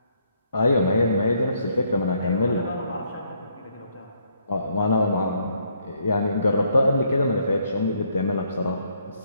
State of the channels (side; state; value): both; inverted; correlation -0.70